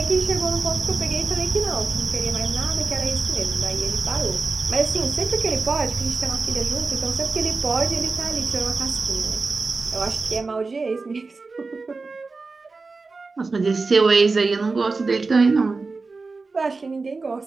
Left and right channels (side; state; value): left; quieter; 4.0 dB